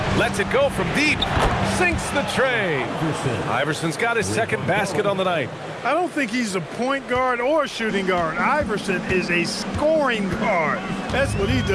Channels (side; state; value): both; identical; correlation 1.00